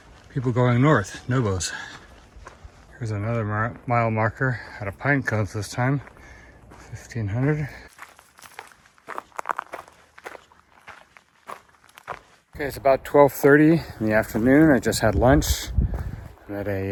people going north, Nobos. Here's another mile marker out of pine cones this time, 1500. Okay, it's about 12:30 in the afternoon. I just had lunch. I'm at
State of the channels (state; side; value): identical; both; correlation 1.00